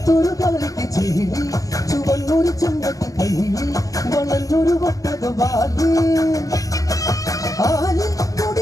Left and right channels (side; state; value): right; late; 0.16 ms